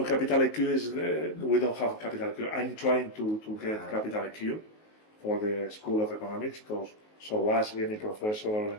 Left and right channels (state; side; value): late; right; 19 ms